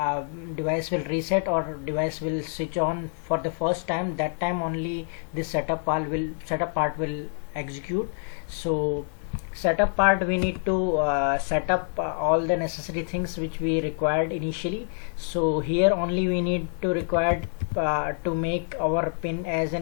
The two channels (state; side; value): silent; right; digital silence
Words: device will reset or device will switch on for the first time, that time only this setup part will execute. So setup part, we need to set up all the necessary things which we required initially. So here only we need to require to make our pin as